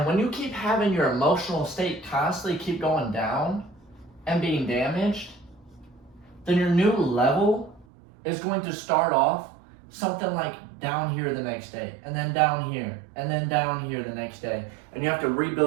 when you keep having your emotional state constantly keep going down and being damaged, then your new level is going to start off something like down here the next day, and then down here, and then down here the next day. And you have to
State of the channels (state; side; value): drops out; left; at 7.9 s